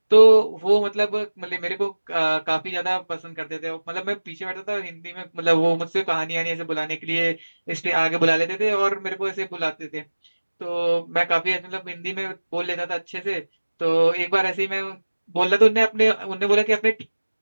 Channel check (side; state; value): both; inverted; correlation -1.00